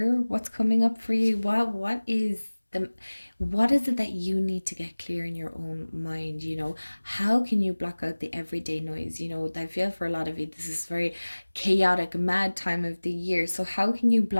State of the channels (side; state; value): both; inverted; correlation -1.00